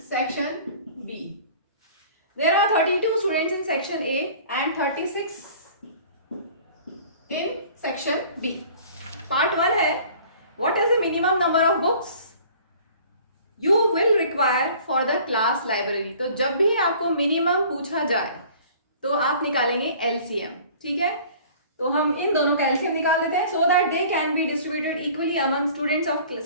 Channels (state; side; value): inverted; both; correlation -0.48